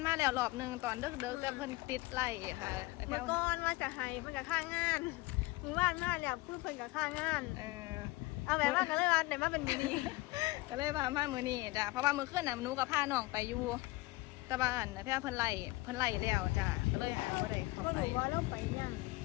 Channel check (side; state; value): right; quieter; 21.2 dB